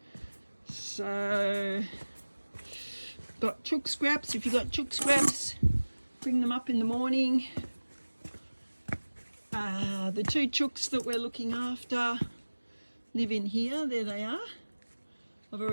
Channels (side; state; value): both; inverted; correlation -1.00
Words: So got chook scraps. If you've got chook scraps, bring them up in the morning. The 2 chooks that we're looking after live in here. There they are. I've